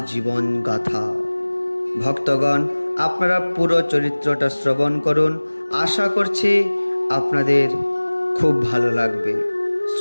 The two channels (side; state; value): both; inverted; correlation -1.00